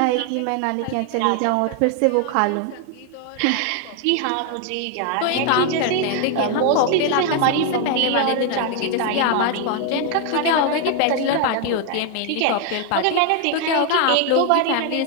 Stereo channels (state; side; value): different; both; correlation 0.01